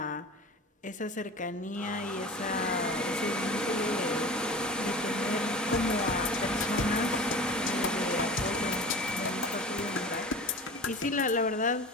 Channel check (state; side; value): normal; both; correlation 0.36